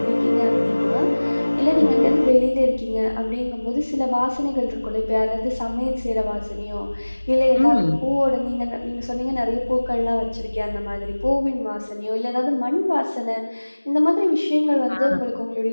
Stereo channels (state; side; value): inverted; both; correlation -1.00